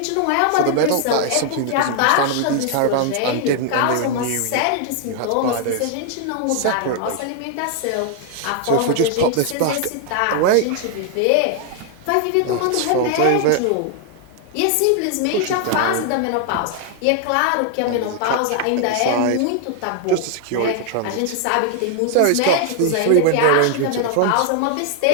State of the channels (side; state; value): both; different; correlation 0.00